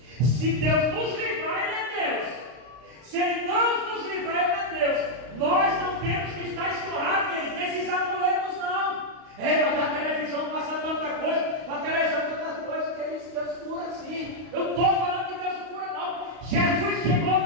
se Deus nos livrar, Ele é Deus. Se Ele não nos livrar, Ele é Deus. Nós não temos que estar escorrados, querido, nesses amuletos, não. Mas na televisão passa tanta coisa, na televisão tanta coisa, que Deus cura assim. Eu estou falando que Deus cura, não. Jesus chegou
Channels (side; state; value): left; late; 32 ms